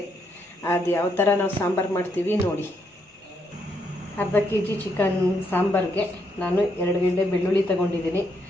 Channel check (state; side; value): normal; both; correlation 0.76